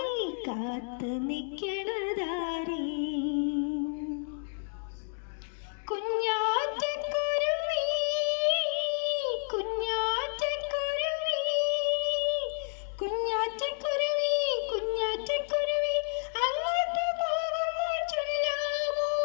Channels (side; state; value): right; silent; digital silence